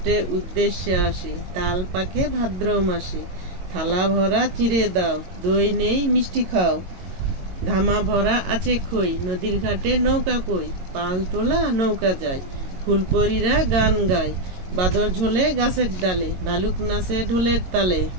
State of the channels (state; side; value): late; left; 22 ms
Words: উদ্দেশ্যে আসে, তাল পাকে ভাদ্র মাসে, থালা ভরা চিড়ে দাও, দই নেই মিষ্টি খাও, ধামা ভরা আছে খই, নদীর ঘাটে নৌকা কই, পাল তোলা নৌকা যায়, ফুলপরীরা গান গায়, বাদর ঝোলে গাছের ডালে, ভালুক নাচে ঢোলের তালে,